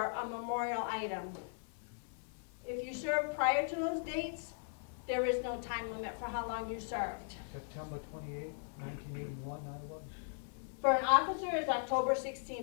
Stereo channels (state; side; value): silent; right; 52 dB below the other